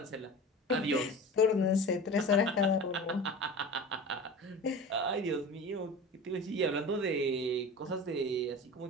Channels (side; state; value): both; normal; correlation 0.34